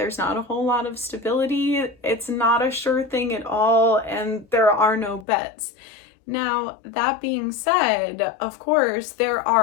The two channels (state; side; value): drops out; right; at 5.2 s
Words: not a whole lot of stability. It's not a sure thing at all, and there are no bets. Now, that being said, of course, there